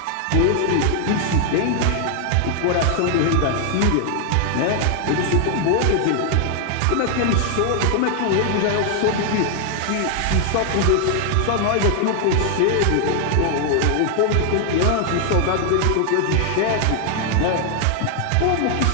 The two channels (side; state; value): both; different; correlation 0.00